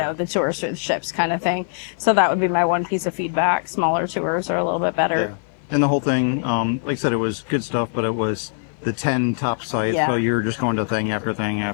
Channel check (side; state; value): right; silent; 56 dB below the other